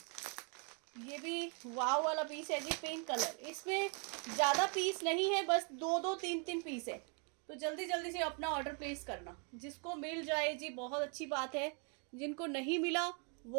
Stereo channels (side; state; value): left; quieter; 37.3 dB